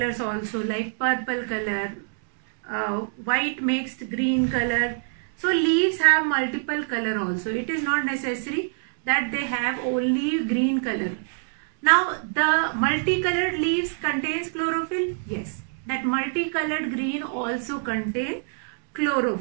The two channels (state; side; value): silent; left; 62 dB below the other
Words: also, like purple color, white mixed green color. So leaves have multiple color also. It is not necessary that they have only green color. Now the multicolored leaves contains chlorophyll. Yes, that multicolored green also contain